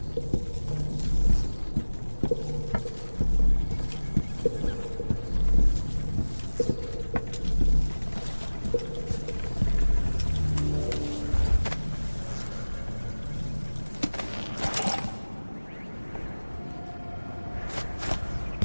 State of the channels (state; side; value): inverted; both; correlation -1.00